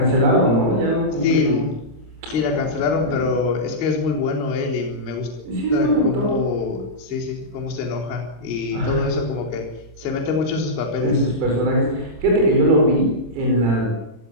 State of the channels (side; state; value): left; late; 26 ms